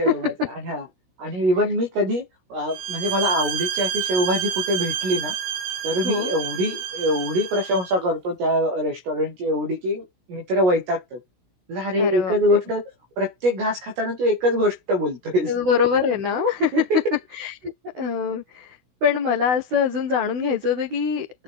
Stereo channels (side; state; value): left; late; 17 ms